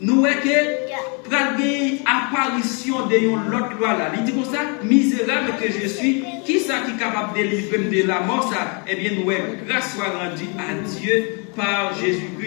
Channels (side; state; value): right; quieter; 35.3 dB